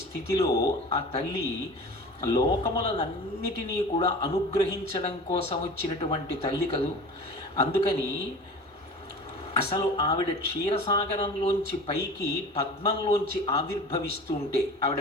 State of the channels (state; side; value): normal; both; correlation 0.37